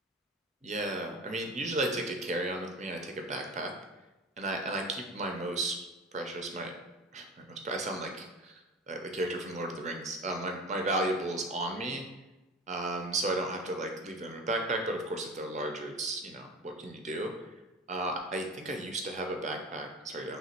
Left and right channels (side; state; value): both; normal; correlation 0.33